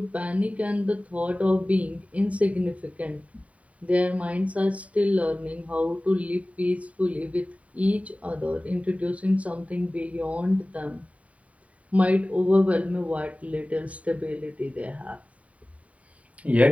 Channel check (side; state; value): left; late; 0.067 ms